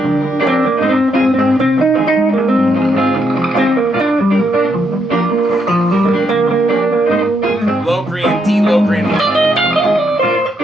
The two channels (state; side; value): normal; both; correlation 0.77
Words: Locrian, D Locrian.